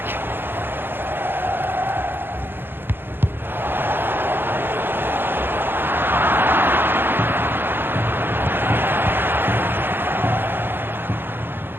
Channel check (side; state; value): left; late; 0.10 ms